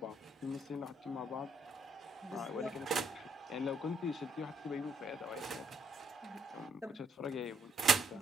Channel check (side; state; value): both; normal; correlation 0.71